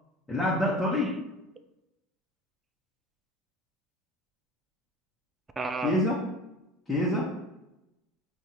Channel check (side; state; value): both; normal; correlation 0.39